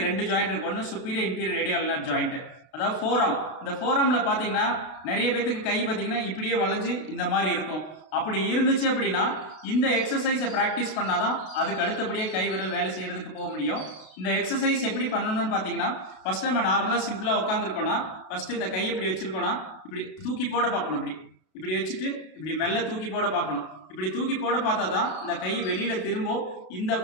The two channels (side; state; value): right; late; 32 ms